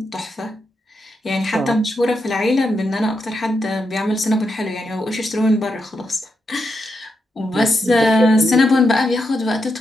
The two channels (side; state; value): both; normal; correlation 0.84